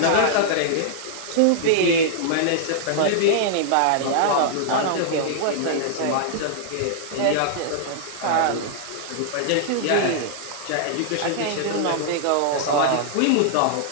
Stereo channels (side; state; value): both; different; correlation -0.01